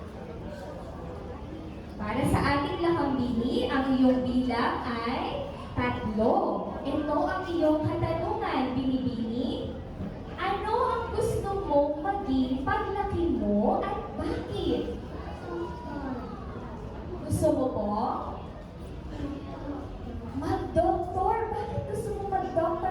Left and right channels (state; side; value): identical; both; correlation 1.00